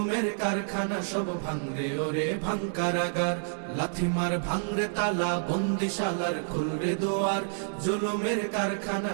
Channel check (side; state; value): left; silent; digital silence